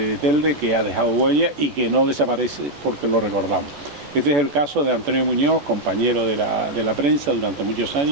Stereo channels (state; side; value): late; left; 14 ms